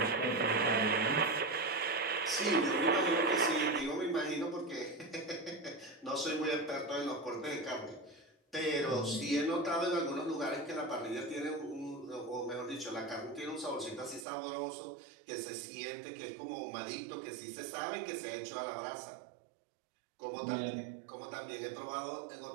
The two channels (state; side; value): drops out; left; at 14.2 s